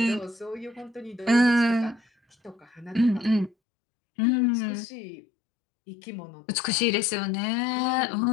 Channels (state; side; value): drops out; right; at 3.6 s